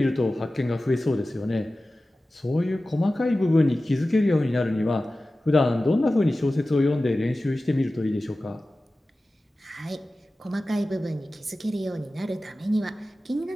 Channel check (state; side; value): normal; both; correlation 0.96